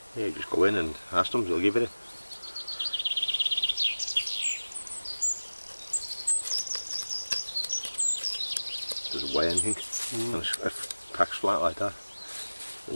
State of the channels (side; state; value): both; inverted; correlation -1.00